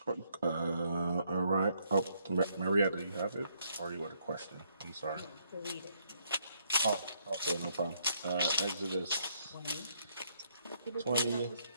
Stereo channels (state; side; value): inverted; both; correlation -0.72